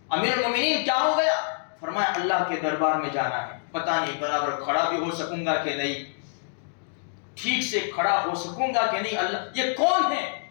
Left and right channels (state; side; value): silent; right; digital silence